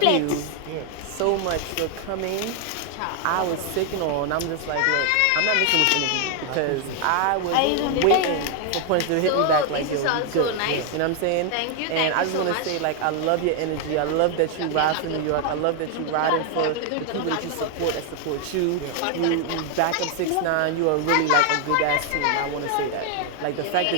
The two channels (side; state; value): both; different; correlation 0.01